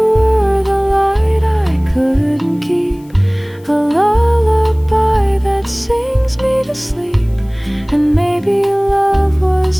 the light I couldn't keep, a lullaby that sings me to sleep. And maybe love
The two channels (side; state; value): left; noise; hiss, 29 dB below the sound